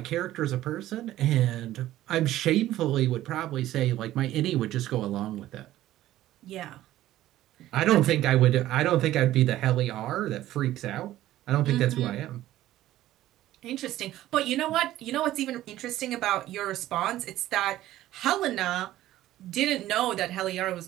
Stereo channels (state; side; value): quieter; left; 14.4 dB